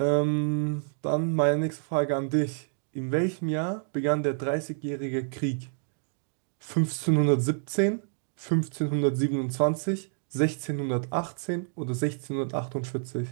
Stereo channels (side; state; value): left; silent; digital silence